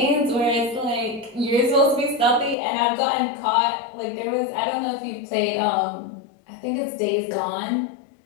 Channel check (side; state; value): right; drops out; at 2.6 s